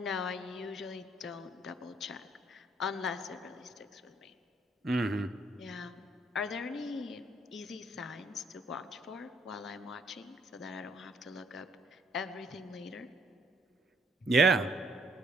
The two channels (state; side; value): normal; both; correlation 0.67